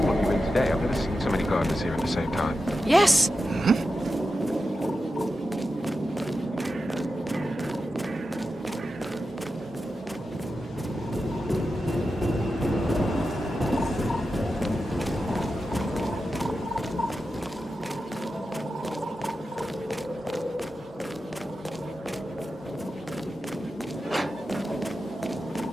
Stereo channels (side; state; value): both; normal; correlation 0.90